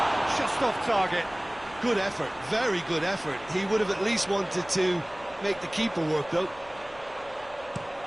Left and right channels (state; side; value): noise; left; rumble, 23 dB below the sound